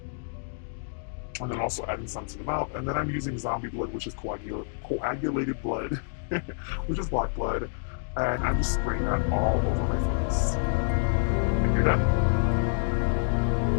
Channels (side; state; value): right; silent; digital silence